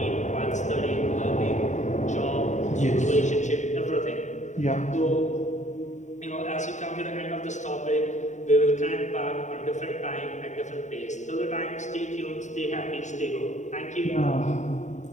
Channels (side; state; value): right; late; 0.34 ms